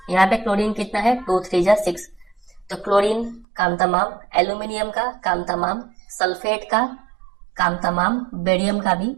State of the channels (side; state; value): left; drops out; at 3.5 s